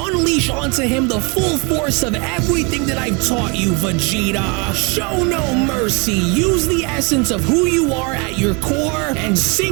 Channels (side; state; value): left; quieter; 31.3 dB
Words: onto him the full force of everything that I've taught you, Vegeta. Show no mercy. Use the essence of who you are at your core and